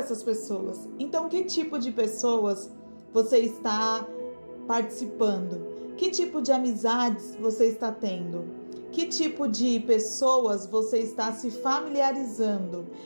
pessoas. Então, que tipo de pessoas você está participando? Que tipo de amizades você está tendo? Que tipo de pessoas você está se familiarizando?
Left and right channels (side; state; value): both; inverted; correlation -1.00